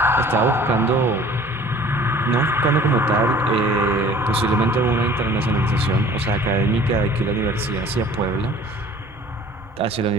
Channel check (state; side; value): normal; both; correlation 0.49